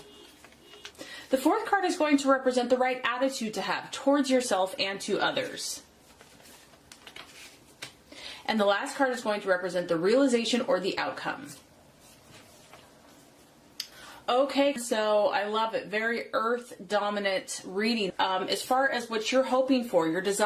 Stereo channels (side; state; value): both; identical; correlation 1.00